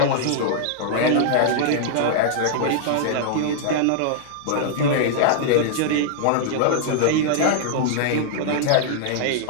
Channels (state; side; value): different; both; correlation -0.01